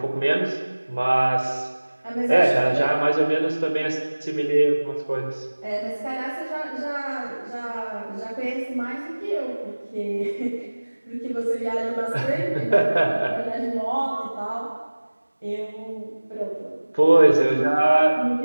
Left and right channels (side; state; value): both; inverted; correlation -1.00